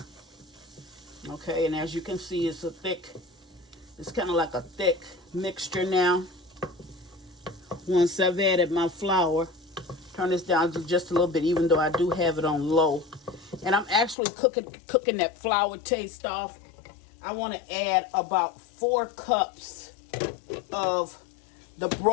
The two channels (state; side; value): drops out; right; at 14.2 s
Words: Okay, and as you can see, it's kind of like a thick mixture now. Once I've added my flour, turn this down to just a little bit, even though I do have it on low. And I'm actually cooking that flour taste off. I want to add about 4 cups of the